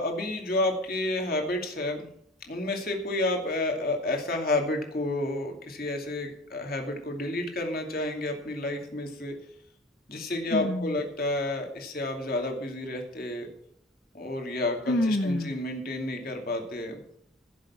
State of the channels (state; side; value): normal; both; correlation 0.37